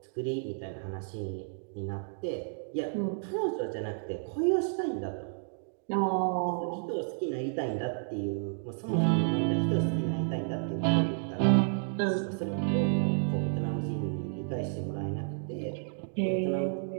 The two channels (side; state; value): left; silent; digital silence